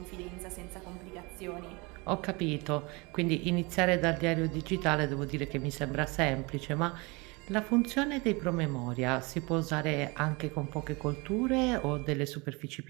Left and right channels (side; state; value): left; quieter; 26.9 dB